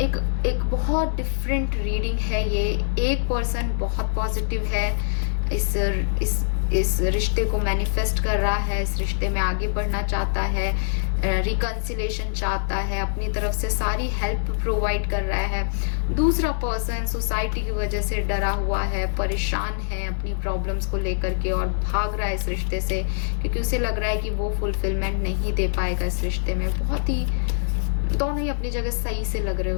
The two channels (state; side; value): silent; right; digital silence